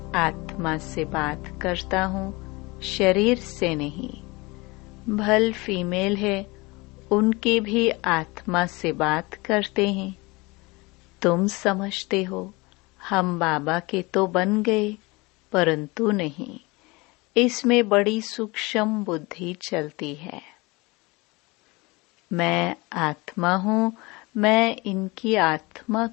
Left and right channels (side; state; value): right; quieter; 24.4 dB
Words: आत्मा से बात करता हूँ, शरीर से नहीं। भल फीमेल है, उनके भी आत्मा से बात करते हैं। तुम समझते हो हम बाबा के तो बन गए, परंतु नहीं। इसमें बड़ी सूक्ष्म बुद्धि चलती है। मैं आत्मा हूँ, मैं इनकी आत्मा